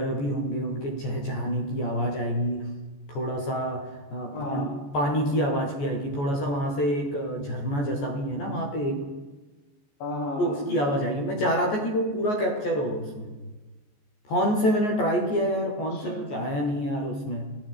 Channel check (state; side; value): late; right; 14 ms